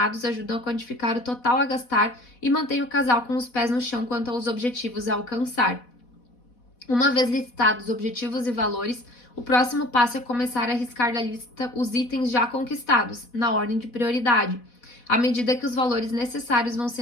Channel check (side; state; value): right; late; 4.1 ms